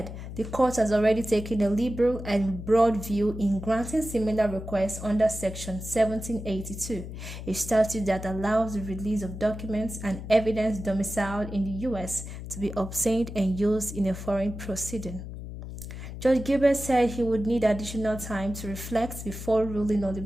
the court has already taken a liberal and broad view in granting similar requests under Section 1782, a statute that allows the release of documents and evidence domiciled in the U.S. to be obtained and used in a foreign proceeding. Judge Gilbert said he would need additional time to reflect before ruling on the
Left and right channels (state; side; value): noise; left; hum, 10 dB below the sound